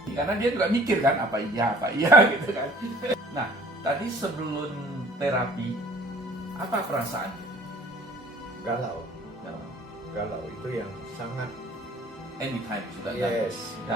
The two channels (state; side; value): normal; both; correlation 0.52